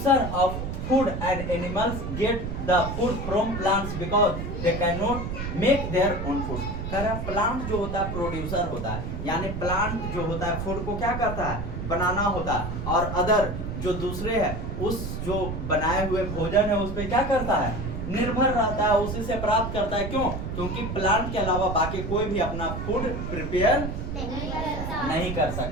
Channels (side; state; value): right; noise; rumble, 5 dB below the sound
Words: of food and animals get the food from plants because they cannot make their own food। कह रहा प्लांट जो होता है प्रोड्यूसर होता है, यानी प्लांट जो होता है फूड को क्या करता है? बनाना होता है, और अदर जो दूसरे है उस जो बनाए हुए भोजन है उस पे क्या करता है? निर्भर रहता है, उसी से प्राप्त करता है। क्यों? क्योंकि प्लांट के अलावा बाकी कोई भी अपना फूड प्रिपेयर नहीं कर